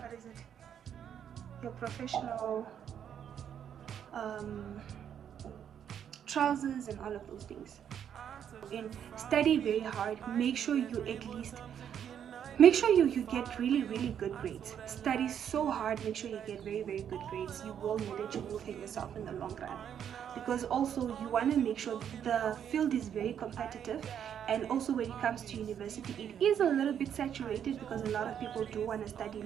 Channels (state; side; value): quieter; left; 8.9 dB